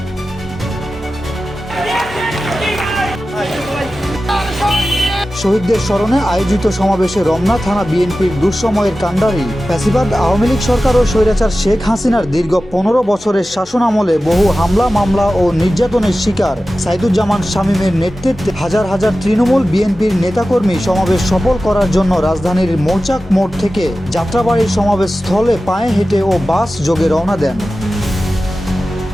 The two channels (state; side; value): normal; both; correlation 0.94